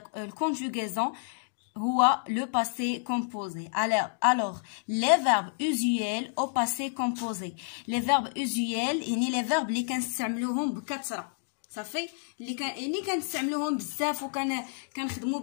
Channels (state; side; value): silent; right; 58 dB below the other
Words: الconjugaison هو le passé composé. Alors, les verbes usuels au passé composé. Les verbes usuels يعني les verbes اللي كنستعملوهم بكثرة. صافي اللي كنستعملوهم بزاف كنخدموا